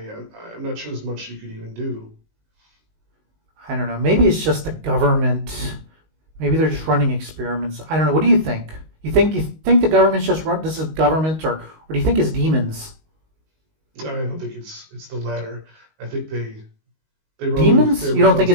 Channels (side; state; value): left; late; 19 ms